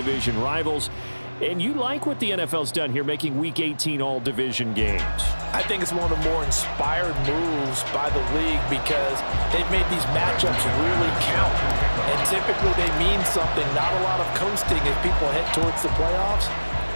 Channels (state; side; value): inverted; both; correlation -1.00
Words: rivals. And you like what the NFL's done here, making Week 18 all-division games. I think it's one of the more inspired moves by the league because they've made these matchups really count. And typically they mean something, not a lot of coasting as people head towards the playoffs.